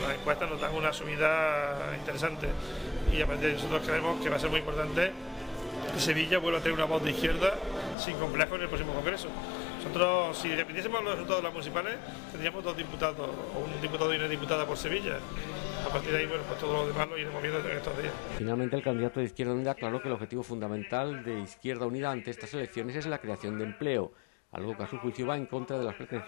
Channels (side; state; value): right; drops out; at 8.0 s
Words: encuestas nos dan una subida interesante y a partir de ahí nosotros creemos que va a ser muy importante que Sevilla vuelva a tener una voz de izquierda sin complejo en el próximo Congreso. Nosotros, si dependiésemos de los resultados de las municipales, tendríamos 2 diputados, o un diputado y una diputada por Sevilla. A partir de ahí, bueno, pues todo lo demás lo iremos viendo en estos días. La izquierda, que tiene complejo, el día 20 tiene la urna de voto rebelde. Tenemos la urna de voto de